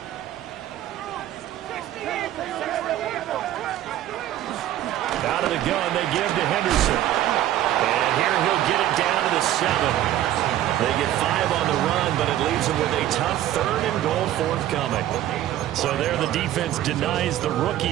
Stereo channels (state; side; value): quieter; left; 12.9 dB